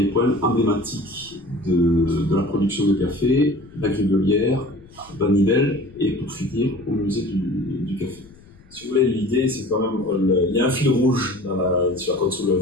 points emblématiques de la production de café, la Grivelière, Vanivelle, et pour finir au musée du café. Si vous voulez, l'idée, c'est quand même, il y a un fil rouge sur la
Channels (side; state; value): left; noise; rumble, 27 dB below the sound